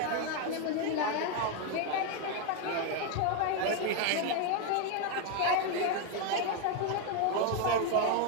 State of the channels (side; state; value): both; different; correlation 0.01